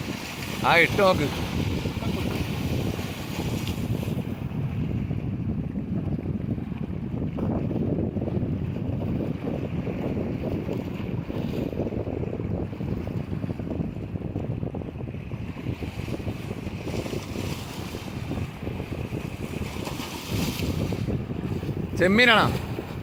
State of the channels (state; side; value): identical; both; correlation 1.00